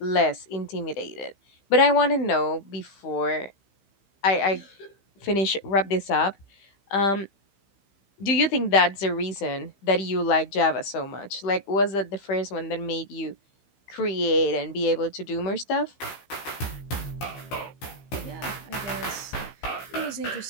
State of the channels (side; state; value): right; late; 15 ms